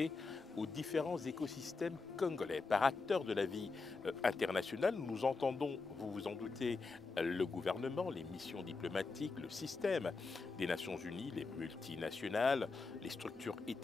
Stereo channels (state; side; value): quieter; right; 4.2 dB